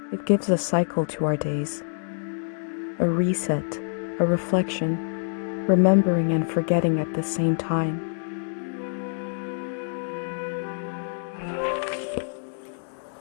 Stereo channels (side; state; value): right; silent; digital silence